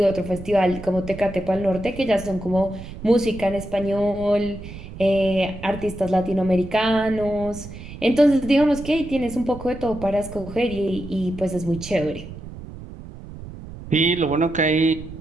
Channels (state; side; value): noise; right; rumble, 13 dB below the sound